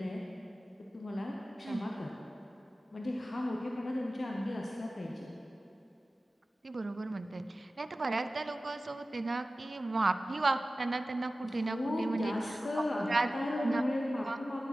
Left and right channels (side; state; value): both; normal; correlation 0.96